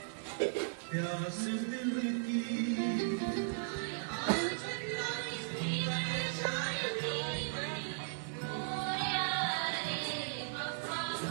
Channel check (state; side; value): silent; left; 53 dB below the other